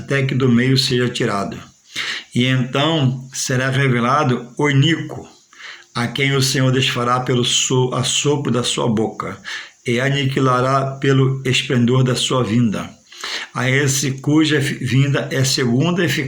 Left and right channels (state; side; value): identical; both; correlation 1.00